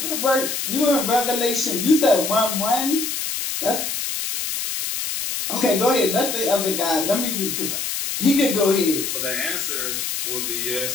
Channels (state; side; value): noise; left; hiss, 3 dB below the sound